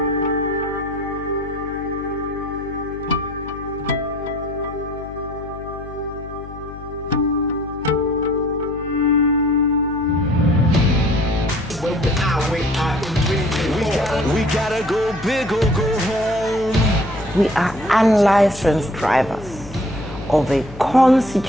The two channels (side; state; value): left; noise; hum, 15 dB below the sound